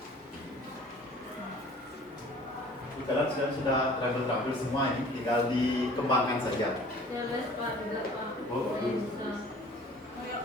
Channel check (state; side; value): normal; both; correlation 0.49